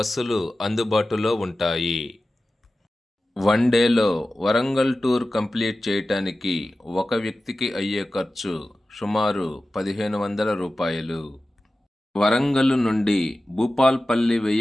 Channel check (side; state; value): both; normal; correlation 0.95